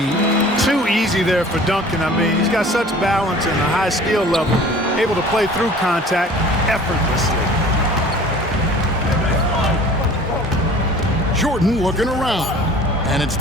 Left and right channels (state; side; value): normal; both; correlation 0.46